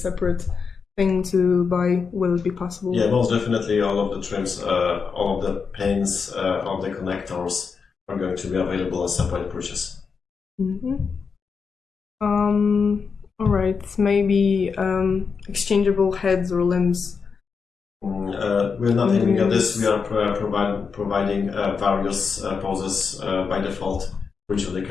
thing to buy. Will it be possible? Yeah, most definitely. All of the trims, all of the pins, all the connectors are going to be available as separate purchase. All right. Maybe exchangeable heads or limbs. We're not aiming at this. We are providing various poses by default for each of the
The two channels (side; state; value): right; quieter; 5.6 dB